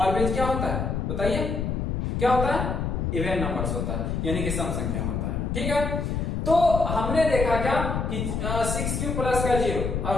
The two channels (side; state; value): left; noise; rumble, 1 dB below the sound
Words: क्या होता है बताइए, क्या होता है, इवन नंबर्स होता है, यानी कि सम संख्या होता है, ठीक है। तो हमने देखा क्या कि 6q प्लस का 0 और